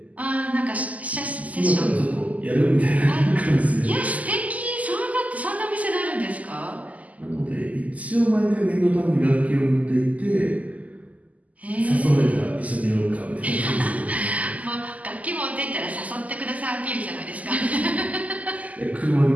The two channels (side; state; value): left; late; 0.074 ms